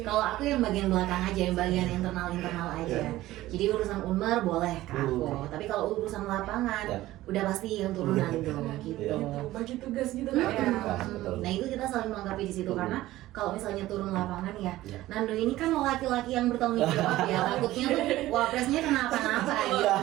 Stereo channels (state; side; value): quieter; left; 16.1 dB